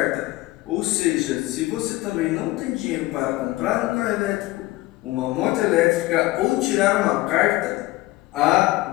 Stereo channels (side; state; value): right; quieter; 18.9 dB